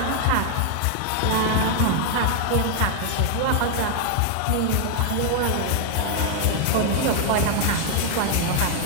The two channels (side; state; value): both; different; correlation 0.00